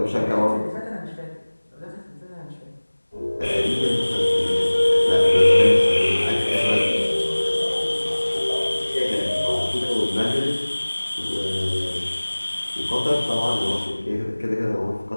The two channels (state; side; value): inverted; both; correlation -1.00